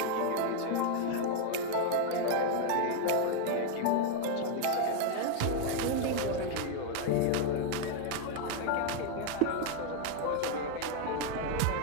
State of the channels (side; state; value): both; different; correlation 0.00